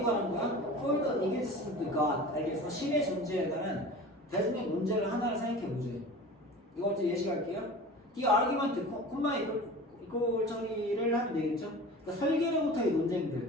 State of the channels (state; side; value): normal; both; correlation 0.37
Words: 관한 거야? For the existence of God. 알겠어? 신의 존재에 관한 대중적 논제를 하나를 생각해 보죠. 이거 이제 예시 갈게요. The argument, 콤마 이꼴 처리를 하면 되겠죠? 그러니까 설계로부터의